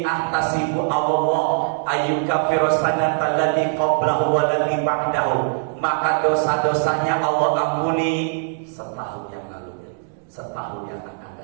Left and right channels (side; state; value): left; silent; digital silence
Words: ahtasibu Allah ayyukaffiru sanata allati qablahu wa allati ba'dahu. Maka dosa-dosanya Allah ampuni setahun yang lalu, setahun yang akan